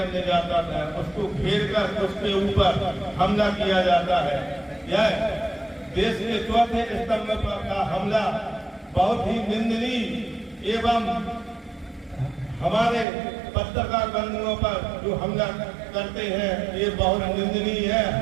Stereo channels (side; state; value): left; drops out; at 13.1 s